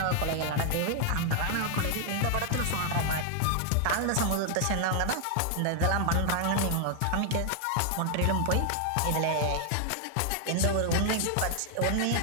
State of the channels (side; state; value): both; different; correlation 0.00